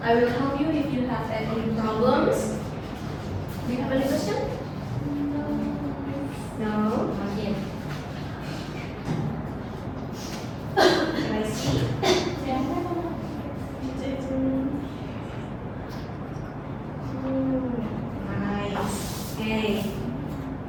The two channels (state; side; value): identical; both; correlation 1.00